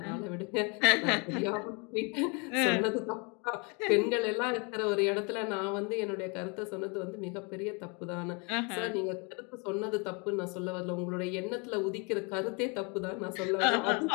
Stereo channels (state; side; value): quieter; right; 32.2 dB